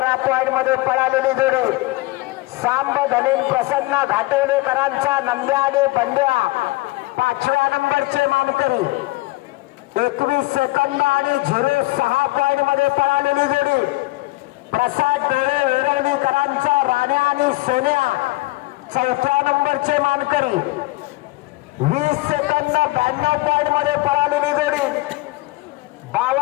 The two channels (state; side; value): quieter; right; 21.0 dB